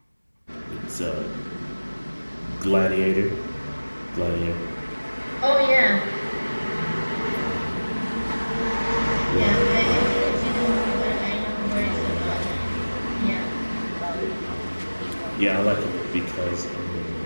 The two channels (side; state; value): both; inverted; correlation -1.00